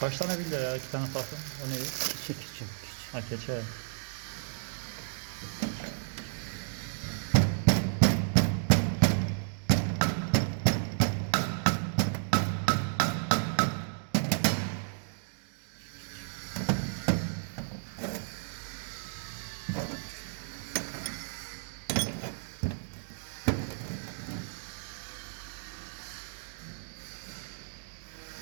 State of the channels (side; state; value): left; silent; digital silence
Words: Kaç tane bildi ya? 2 tane farklı. O neydi? Keçi. Ha keçe.